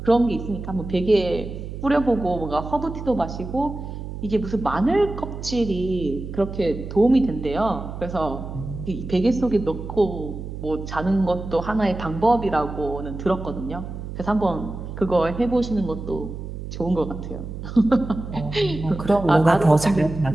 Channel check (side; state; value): right; noise; hum, 9 dB below the sound